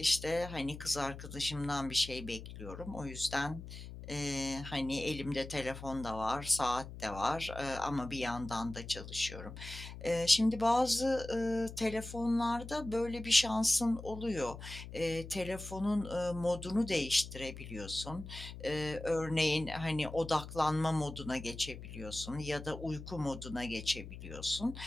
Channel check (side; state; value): left; noise; hum, 12 dB below the sound